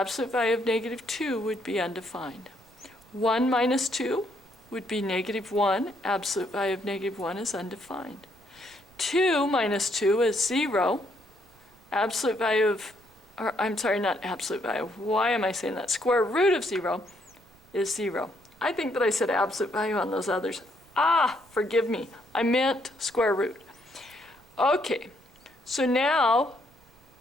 value of negative 2 would be undefined. 1 minus 2 would be negative 1. Absolute value of negative 1 is undefined. 2 minus 2 is 0. Absolute value of, or I'm sorry, not absolute value. Why am I saying that? Square root of 0 is 0. I think that I said absolute value on those others. Ah, forgive me. I meant square root. Okay, so now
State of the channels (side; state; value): right; noise; rumble, 27 dB below the sound